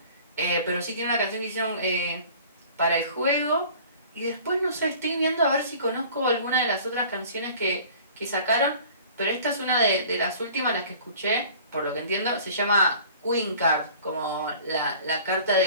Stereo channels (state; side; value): inverted; both; correlation -0.47